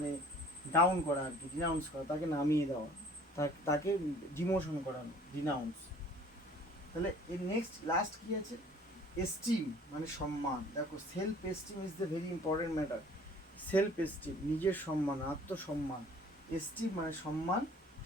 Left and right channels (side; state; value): both; normal; correlation 0.52